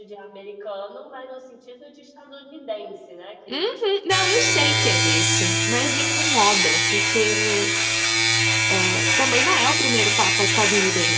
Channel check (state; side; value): identical; both; correlation 1.00